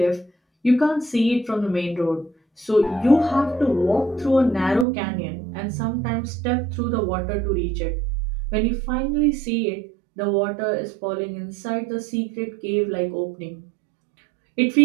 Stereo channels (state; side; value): drops out; left; at 4.9 s